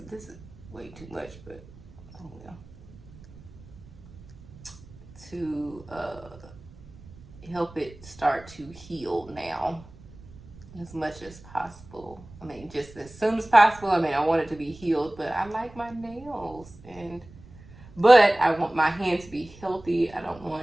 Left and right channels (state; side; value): noise; right; rumble, 20 dB below the sound